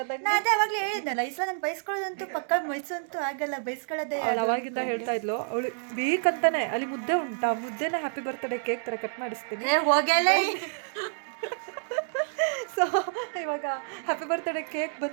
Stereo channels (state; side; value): silent; left; digital silence